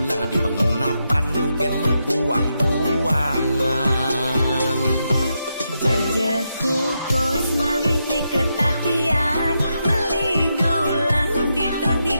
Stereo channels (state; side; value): inverted; both; correlation -0.84